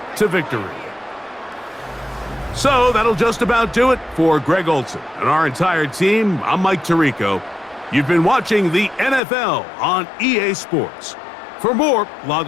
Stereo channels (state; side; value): drops out; right; at 9.2 s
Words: to victory. So, that'll just about do it for Greg Olson and our entire team. I'm Mike Tirico. You've been watching the NFL on EA Sports. For more,